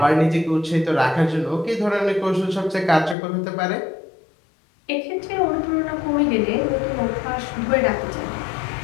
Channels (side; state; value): right; drops out; at 3.2 s